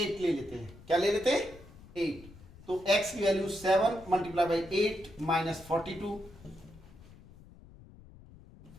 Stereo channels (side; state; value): left; noise; rumble, 21 dB below the sound